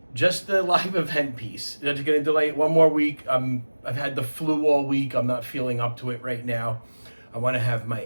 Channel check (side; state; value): both; inverted; correlation -1.00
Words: Just the live event piece. I'm just gonna delay it one more week. I've had the flu all week. I'm not feeling up to it right now. I want to have my